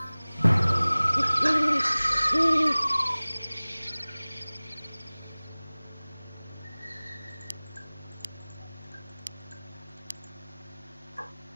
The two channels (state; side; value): inverted; both; correlation -1.00